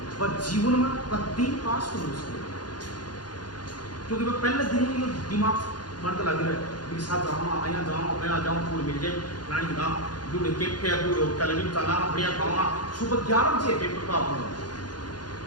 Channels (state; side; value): late; right; 0.70 ms